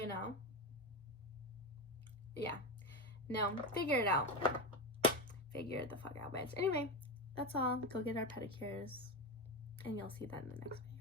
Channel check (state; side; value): normal; both; correlation 0.18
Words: know? Yeah. No, figure it out. Figure it the fuck out, bitch. Anyway, that's all. Go get our pedicures, and you'll see that in the next